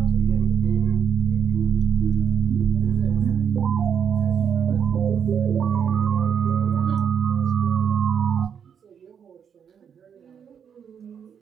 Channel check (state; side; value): quieter; left; 7.7 dB